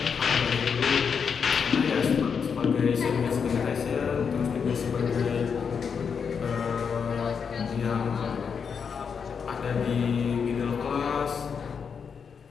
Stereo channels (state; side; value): quieter; right; 6.4 dB